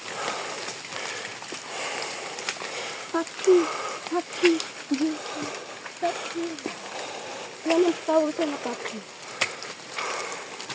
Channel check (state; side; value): identical; both; correlation 1.00